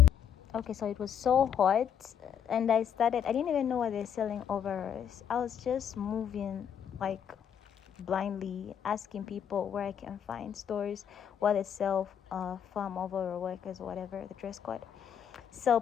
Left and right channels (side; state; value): right; quieter; 8.6 dB